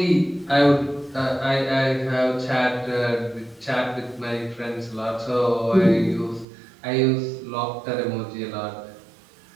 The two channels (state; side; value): drops out; left; at 6.5 s